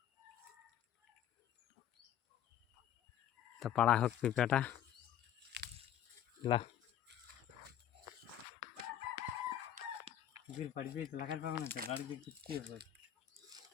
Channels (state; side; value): quieter; right; 10.7 dB